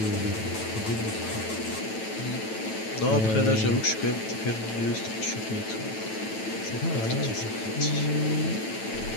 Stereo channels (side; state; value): right; late; 9.1 ms